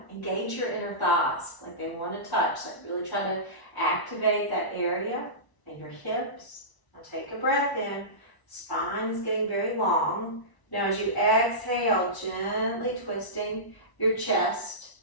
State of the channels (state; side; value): late; right; 1.0 ms